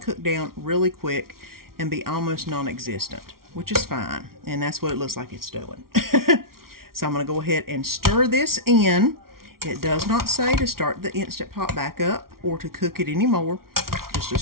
cook down really quick and be almost non-existent, which is fine. And that's what it looks like it's doing. So I'm going to go ahead and stir this in. It does not say to start the Instant Pot back up or to cook it anymore. Just to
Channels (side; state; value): left; late; 0.93 ms